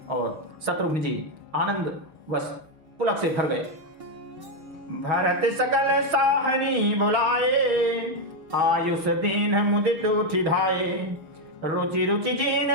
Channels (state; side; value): late; left; 6.3 ms